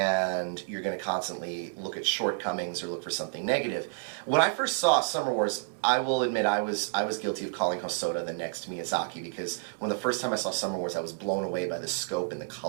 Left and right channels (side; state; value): left; silent; 58 dB below the other